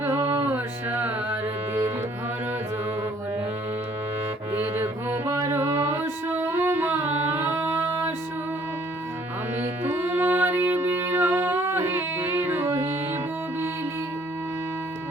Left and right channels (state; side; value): normal; both; correlation 0.61